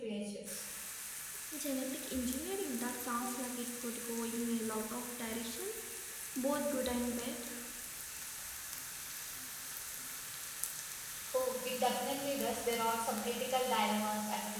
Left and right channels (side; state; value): both; identical; correlation 1.00